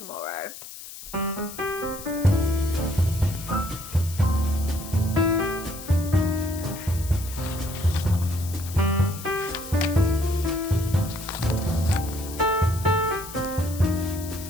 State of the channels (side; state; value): left; noise; hiss, 13 dB below the sound